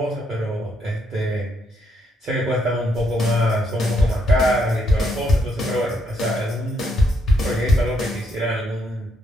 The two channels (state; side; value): normal; both; correlation 0.76